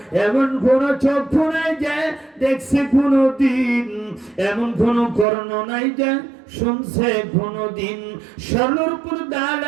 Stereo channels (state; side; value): drops out; left; at 5.2 s